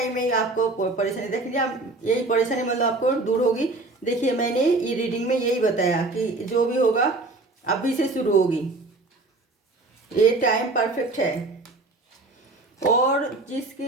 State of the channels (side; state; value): left; quieter; 3.2 dB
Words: में ही आपको परेशानी देखिए, आप यही परेशानी मतलब आपको दूर होगी। देखिए मैंने ये रीडिंग में यही बताया कि जो भी होगा अभी से शुरू होगी। ये टाइम परफेक्ट है। और